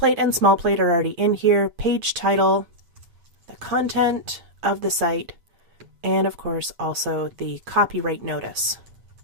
and small plate are already in here, page title, the content of the site, and of course also the copyright notice.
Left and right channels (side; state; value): left; late; 8.5 ms